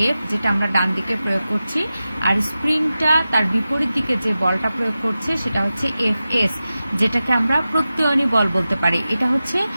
এফ, যেটা আমরা ডান দিকে প্রয়োগ করছি, আর স্প্রিংটা তার বিপরীত দিকে যে বলটা প্রয়োগ করছে সেটা হচ্ছে এফ এস, যেটাকে আমরা প্রত্যয়নী বল বলতে পারি। এটা হচ্ছে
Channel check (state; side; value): inverted; both; correlation -0.94